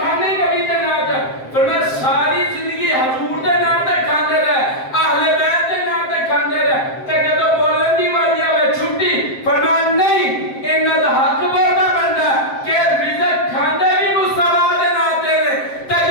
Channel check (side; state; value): right; late; 7.6 ms